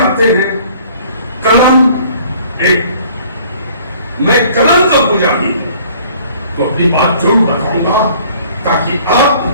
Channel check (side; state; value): both; inverted; correlation -0.55